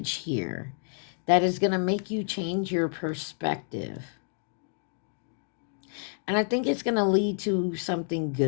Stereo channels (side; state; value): right; silent; digital silence